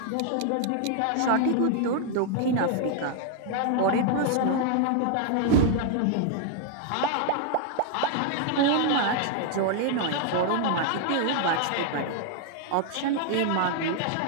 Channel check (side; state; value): both; different; correlation 0.00